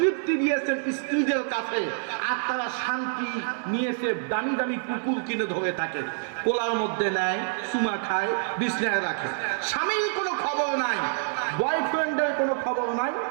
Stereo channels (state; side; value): silent; left; digital silence